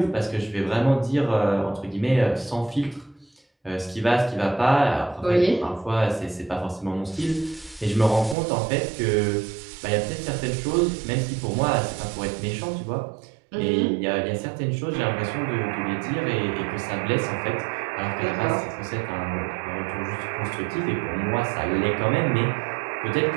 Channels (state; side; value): drops out; left; at 8.3 s